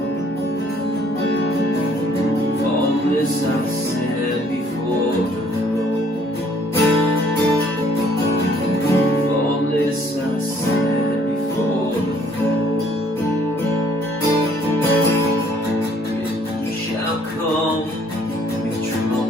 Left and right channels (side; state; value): both; normal; correlation 0.62